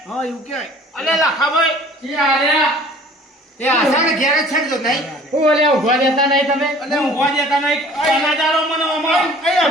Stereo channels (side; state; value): both; normal; correlation 0.50